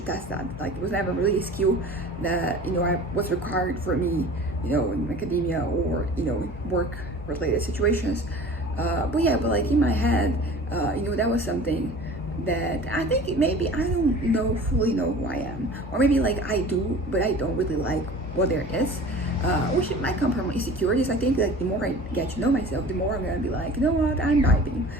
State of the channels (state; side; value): normal; both; correlation 0.41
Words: test that. Like it was never really a skill that I was required for me in academia or work related situations. But like in my head, that was something that I think maybe I don't fully know who I am, or maybe like I do, but I don't really like what there is. which might come from insecurities. I think like the more I get to know myself, the more I'm gonna be like, you know what, I'm vibing